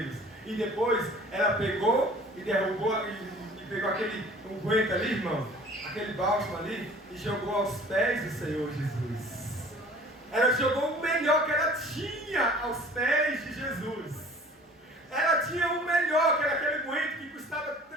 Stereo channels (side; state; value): both; normal; correlation 0.48